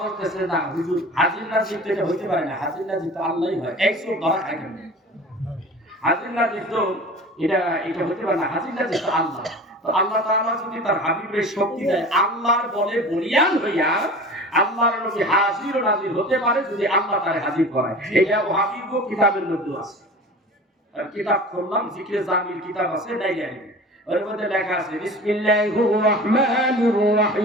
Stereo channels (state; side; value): normal; both; correlation 0.38